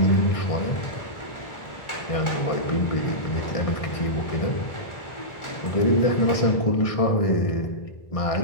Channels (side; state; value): right; late; 1.4 ms